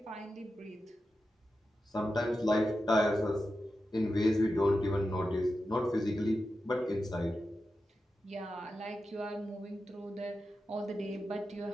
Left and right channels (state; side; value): normal; both; correlation 0.91